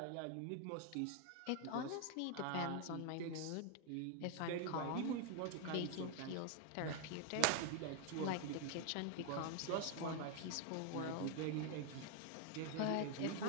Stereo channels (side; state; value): both; different; correlation 0.00